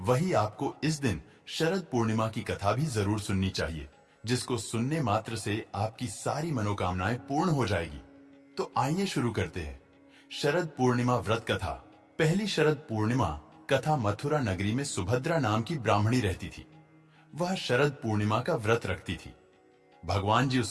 आपको इस दिन शरद पूर्णिमा की कथा भी जरूर सुननी चाहिए, जिसको सुनने मात्र से आपकी सारी मनोकामनाएं पूर्ण हो जाएगी। तो आइए शुरू करते हैं शरद पूर्णिमा व्रत कथा। पहली शरद पूर्णिमा कथा मथुरा नगरी में सुभद्रा नाम की ब्राह्मणी रहती थी। वह शरद पूर्णिमा का व्रत रखती थी। भगवान जी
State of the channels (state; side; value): identical; both; correlation 1.00